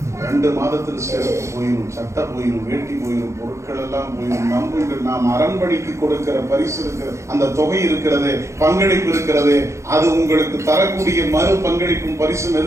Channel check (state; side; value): late; left; 0.14 ms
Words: 2 மாதத்தில் செருப்பு போயிடும், சட்டை போயிடும், வேட்டி போயிடும், பொருட்கள் எல்லாம் போயிடும். நம்புங்கள், நாம் அரண்மனைக்கு கொடுக்கிற பரிசு இருக்கிற அந்த தொகை இருக்கிறது, பங்களிப்பு இருக்கிறது, அது உங்களுக்கு தரக்கூடிய மறு பங்களிப்பும் பரிசும்